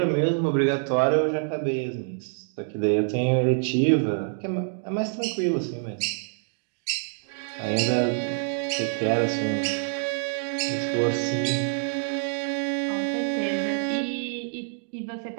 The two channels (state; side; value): silent; left; 58 dB below the other